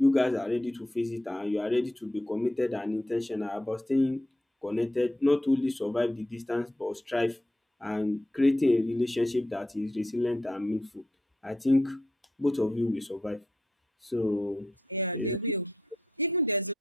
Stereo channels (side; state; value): both; normal; correlation 0.82